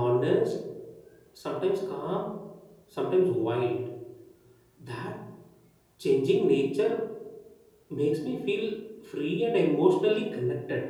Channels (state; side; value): identical; both; correlation 1.00